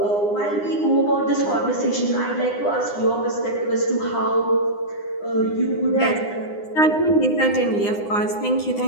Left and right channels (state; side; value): late; right; 9.8 ms